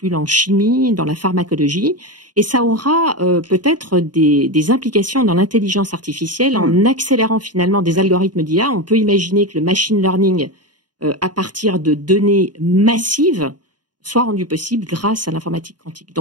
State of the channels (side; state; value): left; late; 0.70 ms